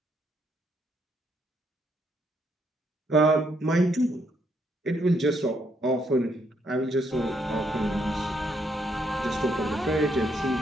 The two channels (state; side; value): normal; both; correlation 0.74